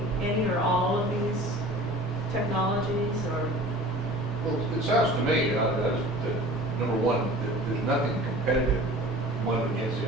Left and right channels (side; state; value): both; normal; correlation 0.42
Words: any or all of these technologies, or? Well, it sounds to me that number one, there's nothing competitive one against the